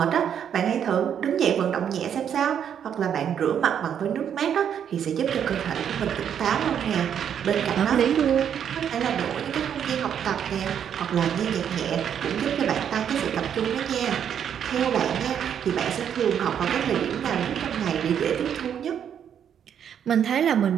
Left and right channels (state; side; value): quieter; left; 8.7 dB